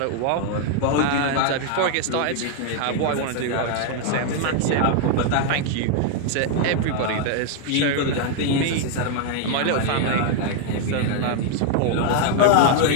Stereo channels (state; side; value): different; both; correlation 0.00